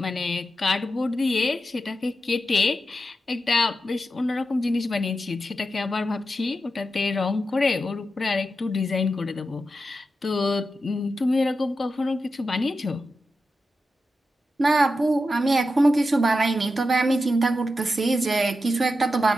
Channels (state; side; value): normal; both; correlation 0.89